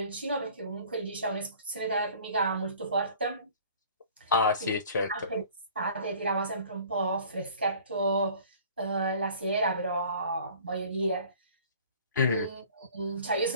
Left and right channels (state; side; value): inverted; both; correlation -0.49